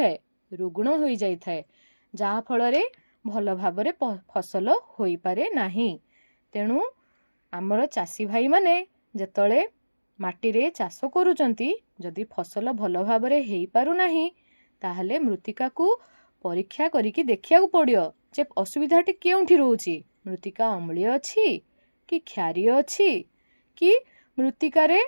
ରୁଗ୍ଣ ହୋଇଯାଇଥାଏ, ଯାହା ଫଳରେ ଭଲ ଭାବରେ ଫସଲ ହୋଇପାରେ ନାହିଁ। ତେଣୁ ଆମର ଚାଷୀ ଭାଇମାନେ ଯେତେବେଳେ ମାଟିରେ ଚାଷ କରୁଛନ୍ତି, ଯଦି ଫସଲ ଭଲ ଭାବରେ ହେଇପାରୁନାହିଁ, ତାହେଲେ ମୃତ୍ତିକାକୁ ପରୀକ୍ଷା କରିକି ଦେଖିବାକୁ ପଡ଼ିବ ଯେ ଅସୁବିଧାଟି କେଉଁଠି ରହୁଛି। ମୃତ୍ତିକା ଅମ୍ଳୀୟ ଅଛି କି କ୍ଷାରୀୟ ଅଛି କି ମୃତ୍ତିକାରେ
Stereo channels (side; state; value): both; inverted; correlation -1.00